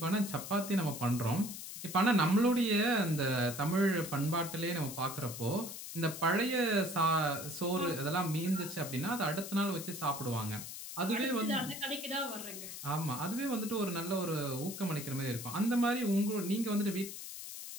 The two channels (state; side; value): noise; left; hiss, 9 dB below the sound